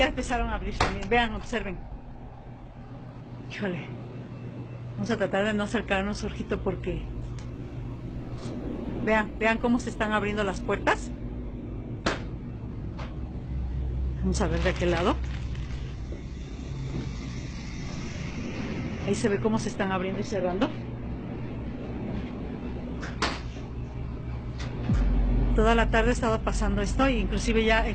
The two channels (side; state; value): both; identical; correlation 1.00